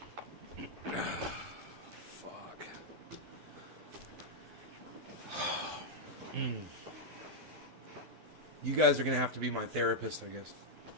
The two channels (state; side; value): late; left; 12 ms